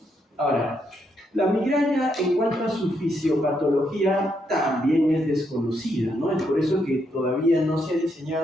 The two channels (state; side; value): normal; both; correlation 0.78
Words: Ahora, la migraña, en cuanto a su fisiopatología, también es desconocida, ¿no? Es por eso que todavía no se ha